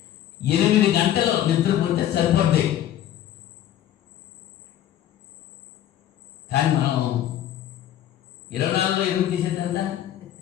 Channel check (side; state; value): right; quieter; 11.6 dB